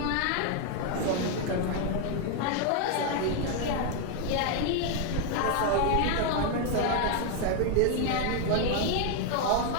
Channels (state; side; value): different; both; correlation 0.01